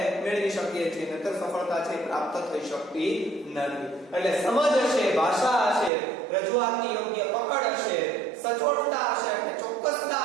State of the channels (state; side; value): drops out; left; at 5.9 s